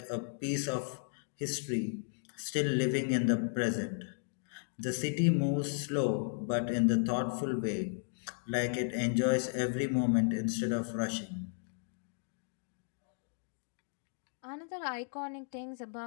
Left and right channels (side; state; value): right; silent; digital silence